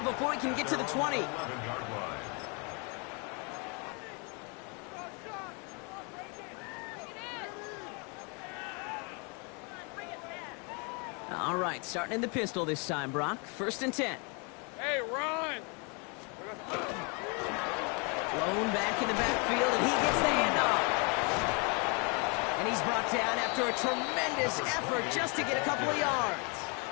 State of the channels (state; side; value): quieter; right; 33.6 dB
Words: before he can get to the 20. All right, starting in the pistol this time, Brock. 1st and 10. Hey, run. Blown back in the backfield, and he gets the handoff. And he's brought down after a tremendous effort just to get a couple of yards.